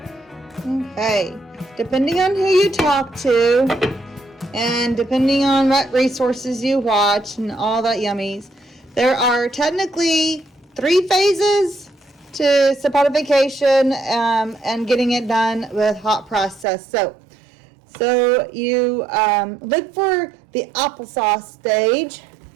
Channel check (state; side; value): drops out; left; at 16.7 s